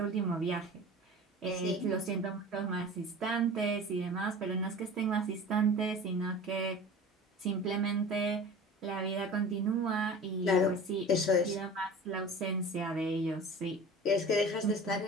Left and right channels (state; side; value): normal; both; correlation 0.38